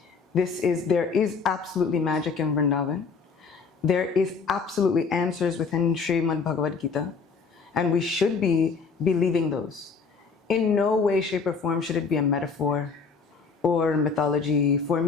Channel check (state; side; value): quieter; right; 5.1 dB